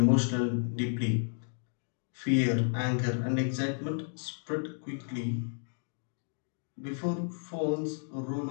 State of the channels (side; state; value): right; silent; digital silence